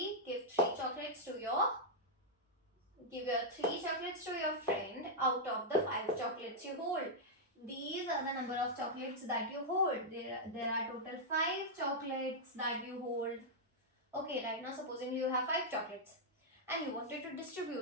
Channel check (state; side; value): normal; both; correlation -0.05